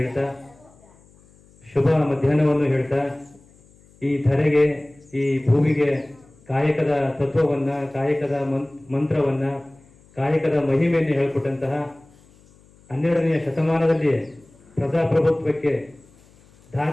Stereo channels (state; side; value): noise; left; hum, 28 dB below the sound